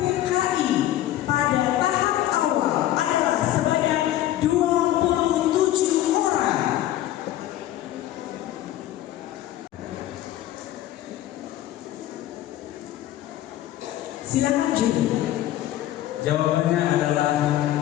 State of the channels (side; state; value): right; quieter; 13.5 dB